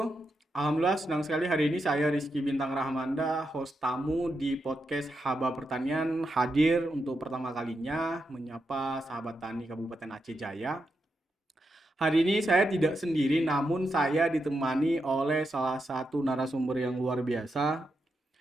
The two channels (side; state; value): both; normal; correlation 0.85